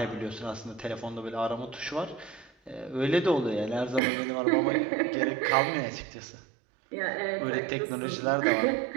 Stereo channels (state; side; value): drops out; left; at 4.0 s